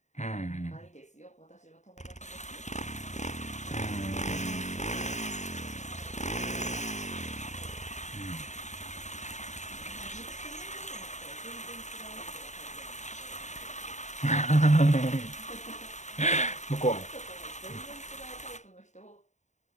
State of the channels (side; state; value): right; late; 0.34 ms